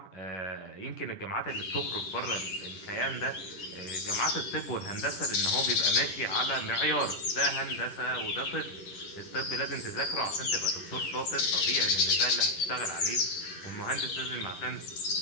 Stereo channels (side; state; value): right; late; 10 ms